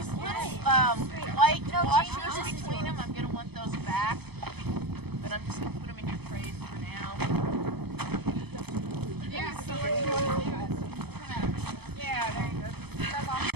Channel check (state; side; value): late; left; 0.98 ms